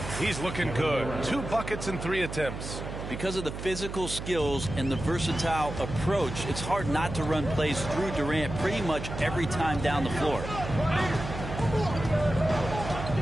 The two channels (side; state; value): right; noise; hum, 8 dB below the sound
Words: He's looking good. 2 buckets and 3 attempts. Because of the physical skills and the versatile approach, it's hard not to run plays through Durant pretty much every time down the floor.